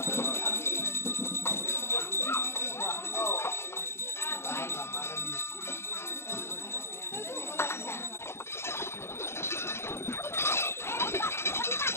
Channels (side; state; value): right; late; 0.12 ms